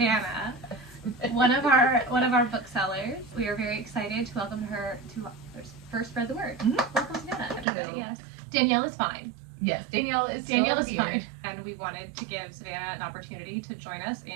one of our booksellers. We are very excited to welcome her to first Spread the Word. Welcome, Savannah. Everybody, yes. Danielle is fine. Yes, Danielle is fine. And we wanted to give Savannah an opportunity to join us,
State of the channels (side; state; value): left; drops out; at 7.7 s